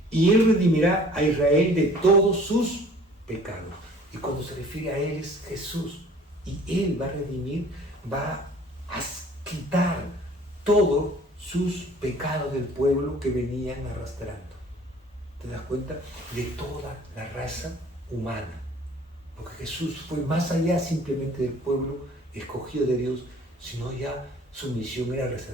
y él redimirá a Israel de todos sus pecados. Y cuando se refiere a él es Jesús, y él va a redimir, va a quitar todos sus pecados del pueblo que venían arrastrando. ¿Te das cuenta? De toda la raza humana. Porque Jesús fue más allá simplemente del pueblo escogido de Dios, sino ya su misión era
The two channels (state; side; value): normal; both; correlation 0.51